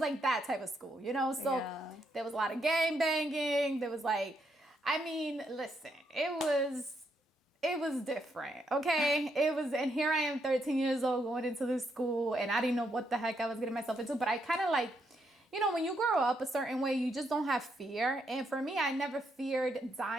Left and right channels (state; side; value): normal; both; correlation 0.77